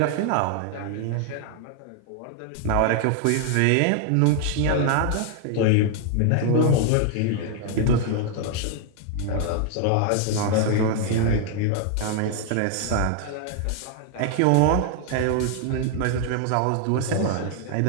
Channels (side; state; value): both; different; correlation 0.00